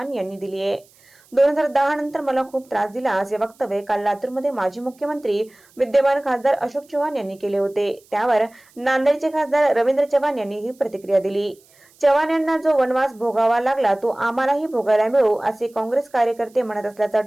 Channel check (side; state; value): right; noise; hiss, 30 dB below the sound